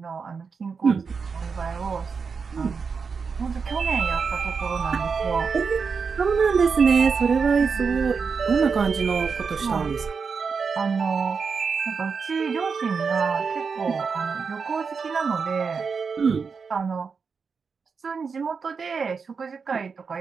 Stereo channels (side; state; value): left; quieter; 5.4 dB